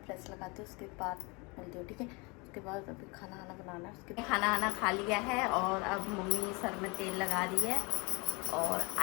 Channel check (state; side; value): quieter; right; 28.5 dB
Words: प्रेस लगाती हूँ, उसके बाद मिलती हूँ, ठीक है। उसके बाद अभी खाना बनाना है। उसके खाना खा लिया है और अब मम्मी सर में तेल लगा रही है। और